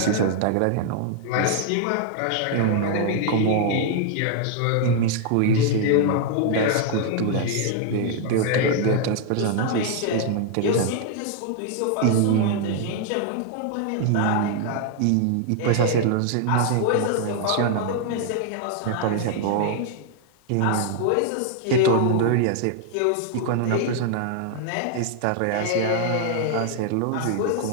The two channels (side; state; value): both; different; correlation 0.00